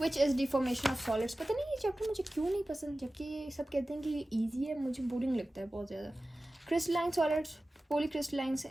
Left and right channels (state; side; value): normal; both; correlation 0.96